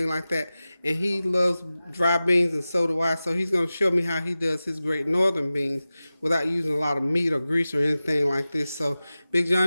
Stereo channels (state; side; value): inverted; both; correlation -0.96